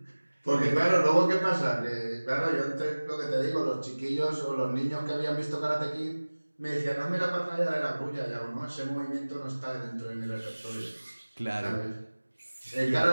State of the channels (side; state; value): both; inverted; correlation -1.00